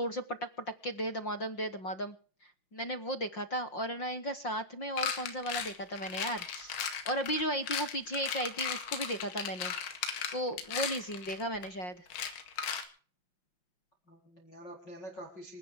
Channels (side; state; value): right; late; 5.7 ms